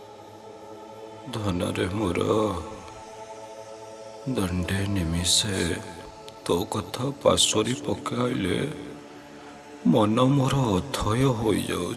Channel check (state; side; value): identical; both; correlation 1.00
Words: ଧନରେ ମୋର ଦଣ୍ଡେ ନିମିଷେ ତୋ କଥା ପାଶୋରି ପକାଇଲେ ମନ ମୋର ଅଥୟ